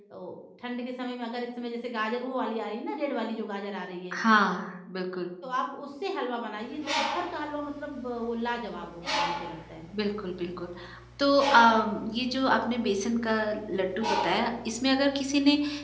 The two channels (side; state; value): both; identical; correlation 1.00